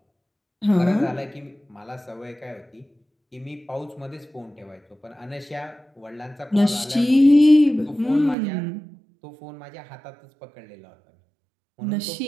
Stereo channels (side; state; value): left; drops out; at 8.3 s